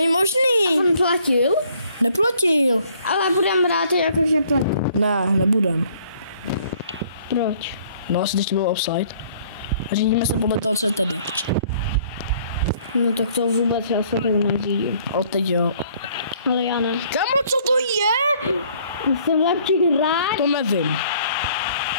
možný. On platil? Neplatil. Ale budem brát jakože platil. Ne, nebudem. Proč? No, asi teď to bylo offside. Řídíme se podle toho, co je tady. No tak to vůbec já se tak neřídím. O, teď jo. Ale já ne. Kámo, co to je? Jsem lepší hráč. To nevím.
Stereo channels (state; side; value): inverted; both; correlation -0.60